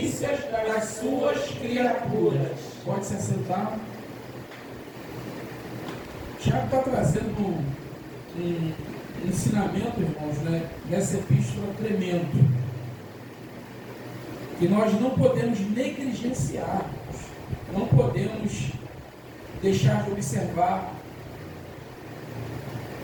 das suas criaturas. Pode se assentar. Tiago está trazendo um ensinamento, irmãos, né, nessa epístola tremendo, que nós não podemos negligenciar, não podemos deixar de observar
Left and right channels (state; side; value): identical; both; correlation 1.00